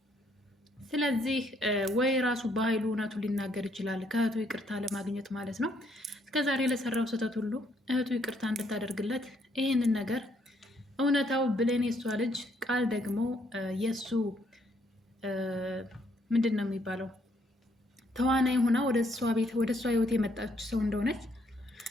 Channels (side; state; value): both; normal; correlation 0.70